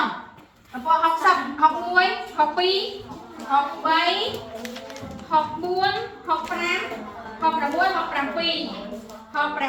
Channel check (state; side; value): identical; both; correlation 1.00